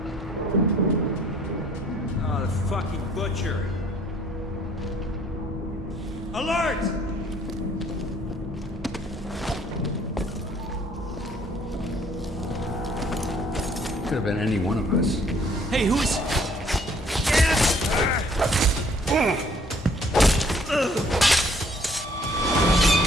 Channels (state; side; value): normal; both; correlation 0.61